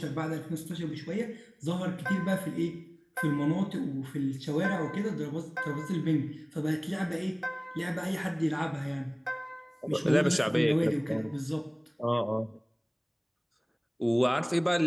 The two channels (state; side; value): identical; both; correlation 1.00